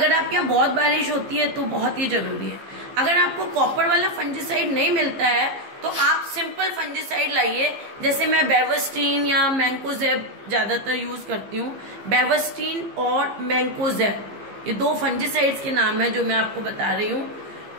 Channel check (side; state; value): left; late; 15 ms